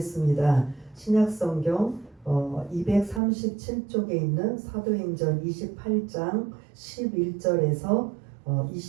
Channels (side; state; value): left; drops out; at 3.2 s